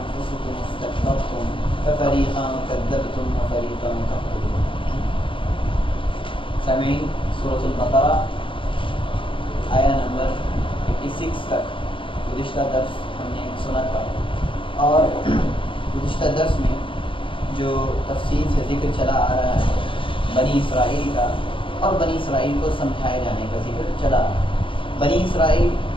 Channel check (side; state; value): right; late; 0.25 ms